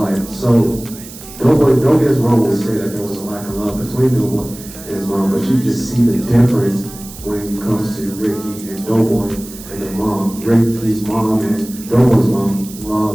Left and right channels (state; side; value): noise; right; hiss, 16 dB below the sound